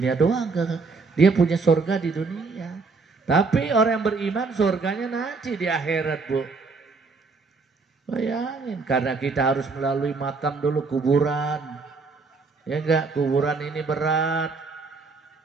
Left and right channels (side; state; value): left; quieter; 4.3 dB